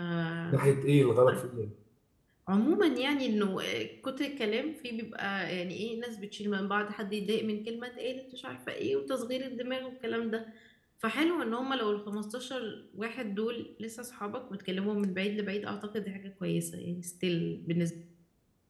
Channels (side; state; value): both; identical; correlation 1.00